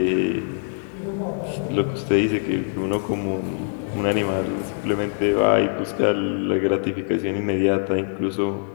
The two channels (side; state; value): right; silent; digital silence